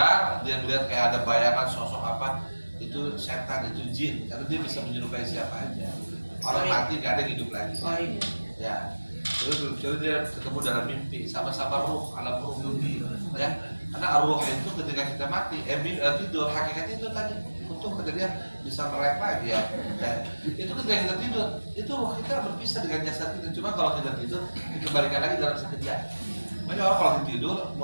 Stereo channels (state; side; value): inverted; both; correlation -1.00